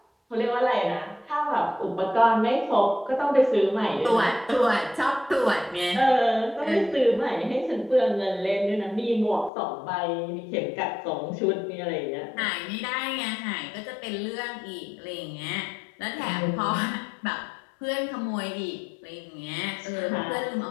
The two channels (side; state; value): right; drops out; at 9.5 s